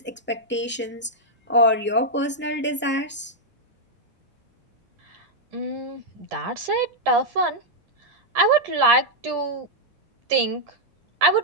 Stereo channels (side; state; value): both; normal; correlation -0.03